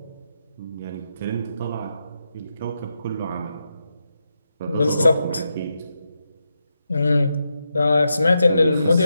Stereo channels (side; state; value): both; inverted; correlation -0.86